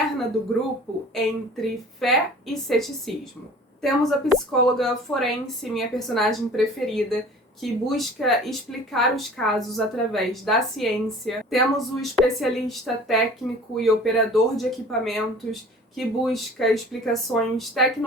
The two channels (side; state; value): both; normal; correlation 0.45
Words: do grupo entre fé e ceticismo. Temos a psicóloga forense, minha personagem preferida, que busca explicar os casos através da ciência. Temos o especialista técnico e operador de equipamentos, que busca explicações